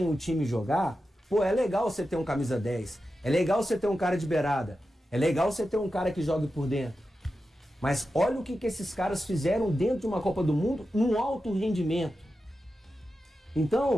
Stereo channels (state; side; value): normal; both; correlation 0.91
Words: o time jogar, pô, é legal você ter um camisa 10. É legal você ter um cara de beirada. É legal você ter um cara que jogue por dentro. Mas olha o que esses caras fizeram dentro de uma Copa do Mundo num alto rendimento.